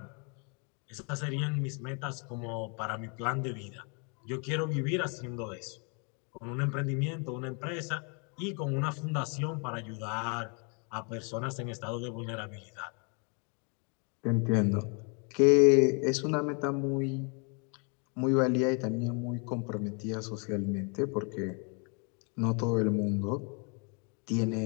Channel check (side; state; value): right; quieter; 36.4 dB